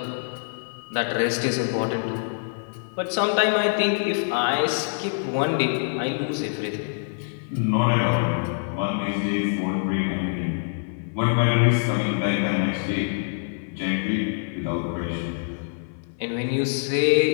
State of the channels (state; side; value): silent; right; 58 dB below the other